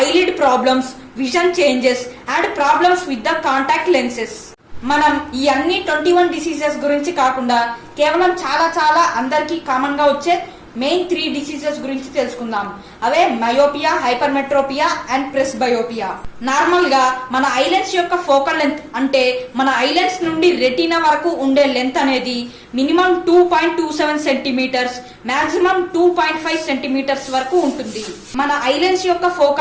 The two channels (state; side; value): identical; both; correlation 1.00